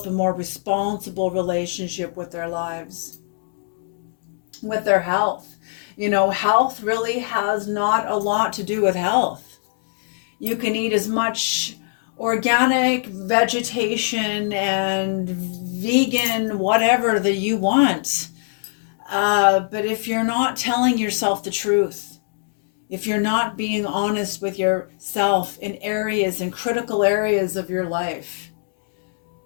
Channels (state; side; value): silent; right; digital silence